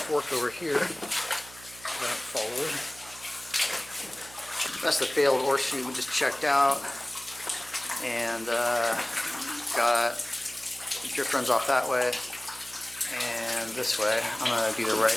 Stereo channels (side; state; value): right; noise; hum, 20 dB below the sound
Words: fork over here that I followed. That's the failed ore chute we just checked out. And got the drift runs off that way and this way. I'm going to do the right